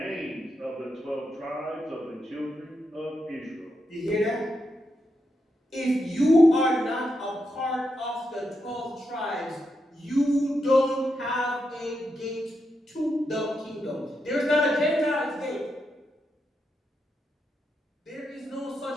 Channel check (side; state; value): both; normal; correlation 0.84